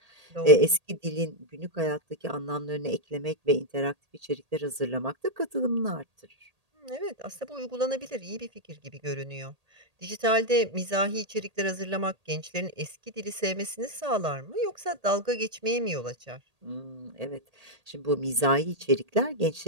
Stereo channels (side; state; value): left; late; 1.8 ms